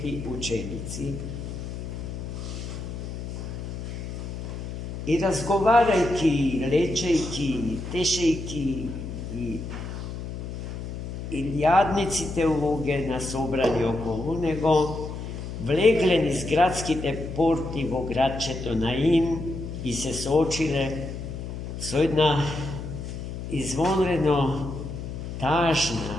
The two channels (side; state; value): left; noise; hum, 7 dB below the sound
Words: ученици. И разговарајќи, лечејќи, тешејќи и лјадниците луѓе на собрани околу него, влегле низ градските порти во градчето Наин и се соочиле со една извонредно